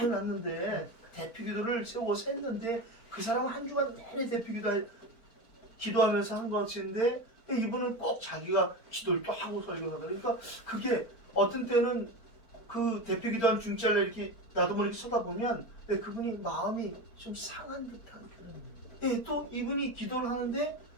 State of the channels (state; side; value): late; right; 4.4 ms